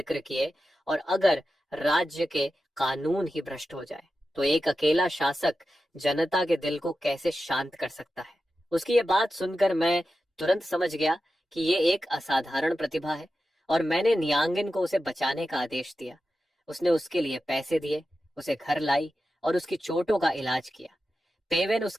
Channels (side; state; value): both; normal; correlation 0.92